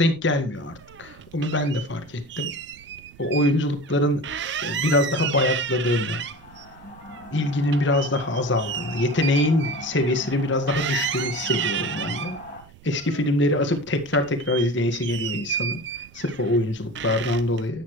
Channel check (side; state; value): right; noise; rumble, 24 dB below the sound